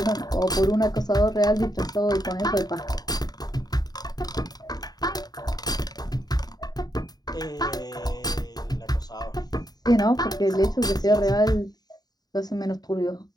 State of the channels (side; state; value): right; late; 0.19 ms